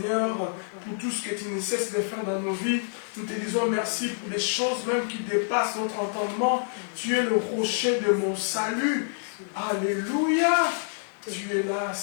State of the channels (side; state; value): right; silent; digital silence